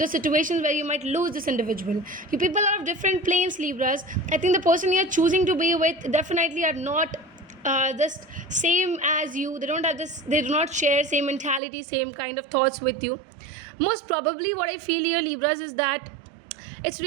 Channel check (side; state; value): left; drops out; at 11.6 s